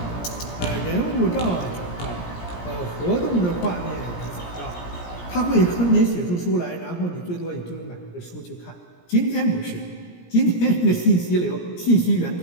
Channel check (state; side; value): late; right; 17 ms